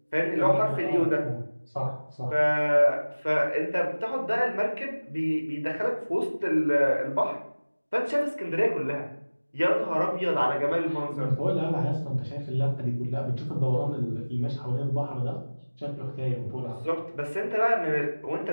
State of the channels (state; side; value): inverted; both; correlation -1.00